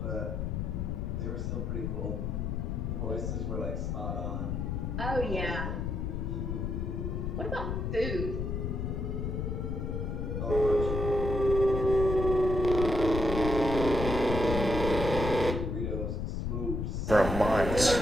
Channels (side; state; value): left; noise; rumble, 2 dB below the sound